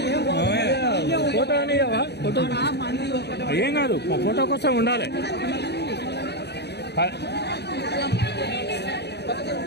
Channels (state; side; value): late; right; 0.49 ms